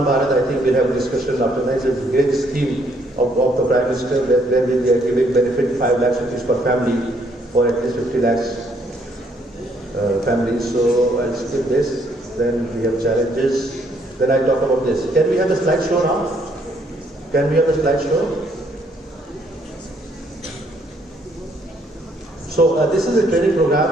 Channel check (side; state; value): both; normal; correlation 0.68